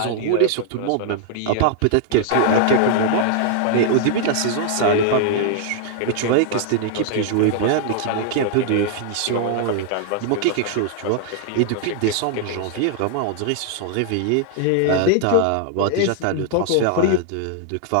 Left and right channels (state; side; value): different; both; correlation -0.01